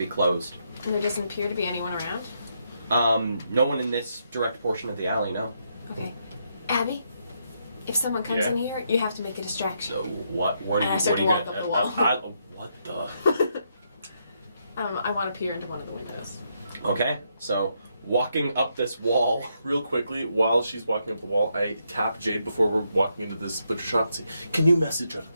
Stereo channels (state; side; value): inverted; both; correlation -0.78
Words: closed. And there doesn't appear to be anyone around? No one in this direct portion of the alley, no. Okay. Abby, if someone comes Yeah? in here, you have to make a distraction. So what are And you I start to walk up the wall. what the? I want to peer into one of the windows. Okay, so walking up this wall. Real quickly, while she's walking up the wall, I tap Jade before we're walking into this butcher shop and say, "Can you message her?